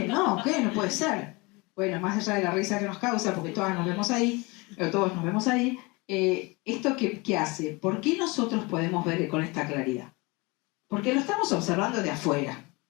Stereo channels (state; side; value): quieter; right; 25.8 dB